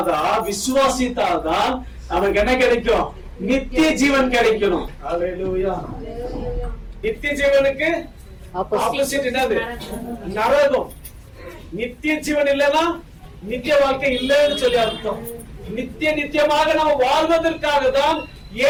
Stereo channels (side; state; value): both; identical; correlation 1.00